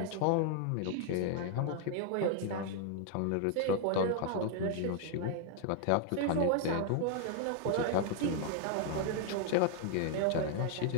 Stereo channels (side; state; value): both; different; correlation 0.00